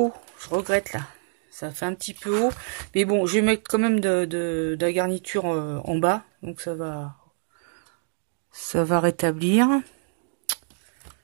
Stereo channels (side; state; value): left; silent; 61 dB below the other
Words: Je regrette, là. Ça fait un petit peu haut. Mais bon, je vais mettre quand même de la garniture en bas. Donc, ça va rétablir.